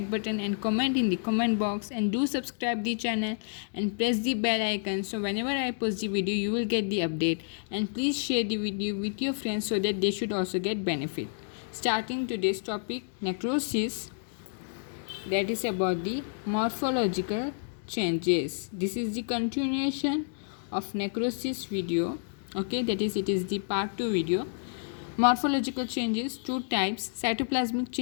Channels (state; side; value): silent; right; digital silence